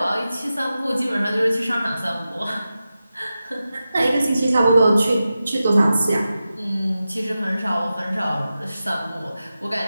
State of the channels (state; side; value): inverted; both; correlation -0.92